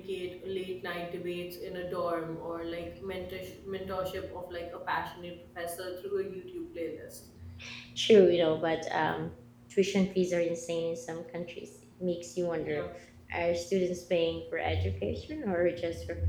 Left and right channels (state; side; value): identical; both; correlation 1.00